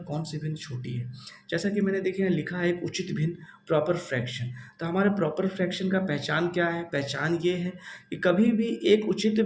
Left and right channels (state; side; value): identical; both; correlation 1.00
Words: कौन सी भिन्न छोटी है। जैसा कि मैंने देखिए लिखा है एक उचित भिन्न प्रॉपर फ्रैक्शन। तो हमारे प्रॉपर फ्रैक्शन का पहचान क्या है? पहचान ये है कि कभी भी एक उचित